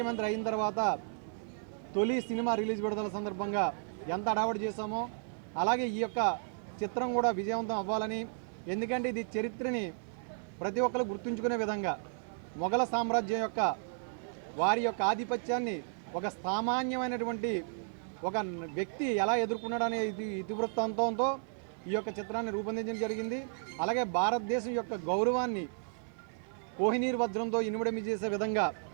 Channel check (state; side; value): silent; left; 55 dB below the other